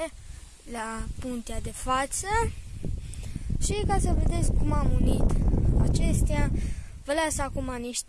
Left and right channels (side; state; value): both; identical; correlation 1.00